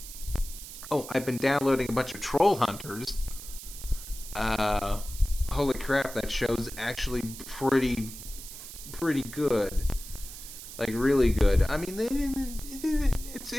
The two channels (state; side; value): noise; right; hiss, 12 dB below the sound